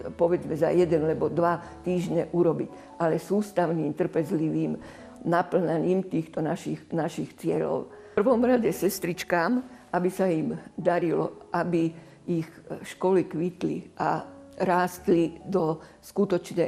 povedzme za 1 alebo 2 týždne urobiť, ale sústavným, trpezlivým naplňaním týchto našich cieľov. V prvom rade sestričkám, aby sa im darilo, aby ich školy kvitli a rástli do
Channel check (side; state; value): both; identical; correlation 1.00